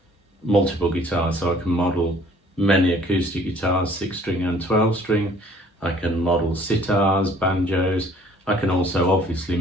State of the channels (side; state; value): both; normal; correlation 0.56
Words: multiple guitars, so I can model many acoustic guitars, 6-string and 12-string. I can model sitars, banjos. I can also obviously